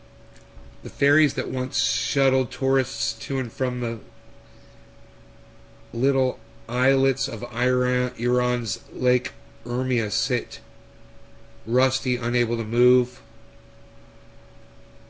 The ferries that once shuttled tourists to and from the little islets of Iran's Lake Urmia sit rusty, unable to move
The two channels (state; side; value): identical; both; correlation 1.00